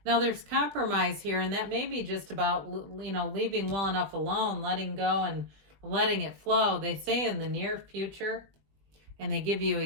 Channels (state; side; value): late; left; 20 ms